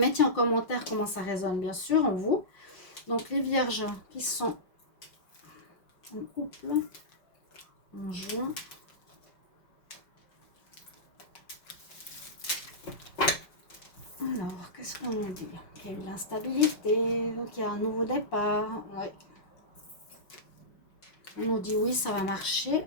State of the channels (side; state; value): right; late; 5.2 ms